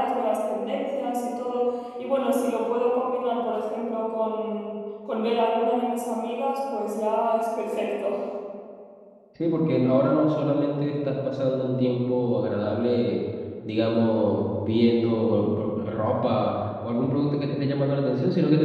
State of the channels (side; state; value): both; identical; correlation 1.00